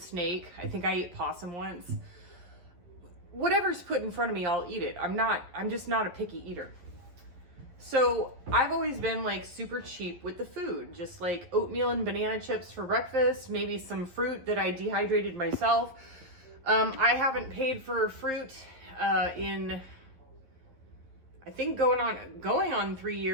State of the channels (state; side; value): late; left; 11 ms